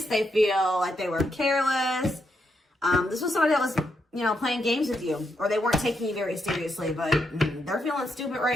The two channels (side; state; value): both; normal; correlation 0.80